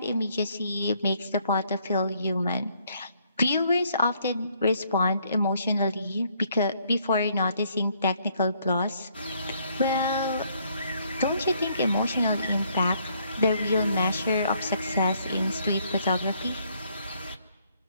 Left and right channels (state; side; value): inverted; both; correlation -0.68